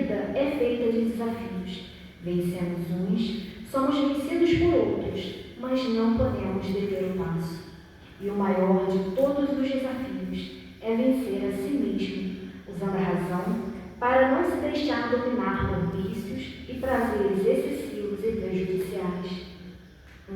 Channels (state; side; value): identical; both; correlation 1.00